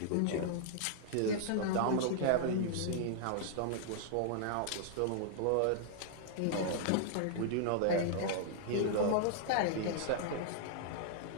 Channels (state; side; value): different; both; correlation -0.01